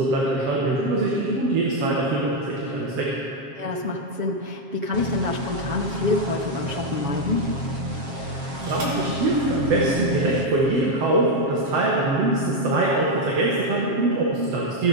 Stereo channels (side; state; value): left; late; 7.4 ms